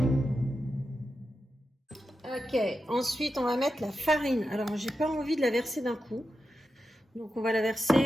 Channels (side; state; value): both; normal; correlation 0.89